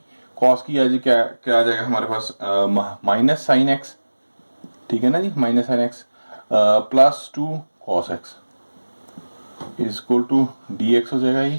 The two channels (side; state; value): both; inverted; correlation -1.00